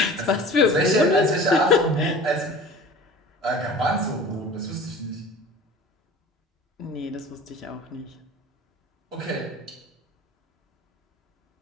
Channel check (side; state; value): both; normal; correlation 0.41